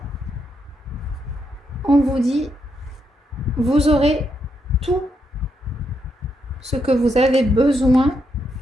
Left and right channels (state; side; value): normal; both; correlation 0.80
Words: on vous dit, vous aurez tout ce que vous avez besoin